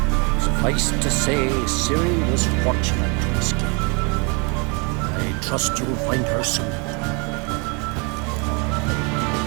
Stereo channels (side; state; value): left; quieter; 32.2 dB